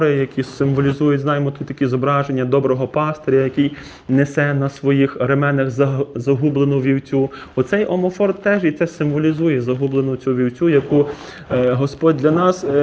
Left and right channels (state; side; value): identical; both; correlation 1.00